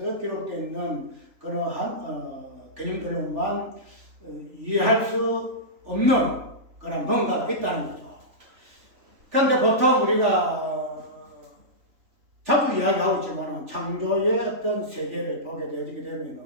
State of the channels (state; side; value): late; left; 3.4 ms